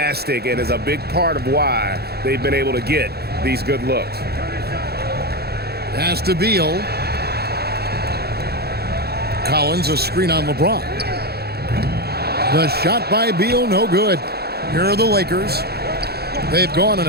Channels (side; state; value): left; late; 0.46 ms